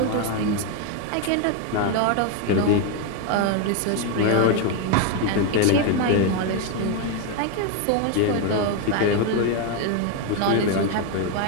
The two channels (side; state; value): both; different; correlation 0.02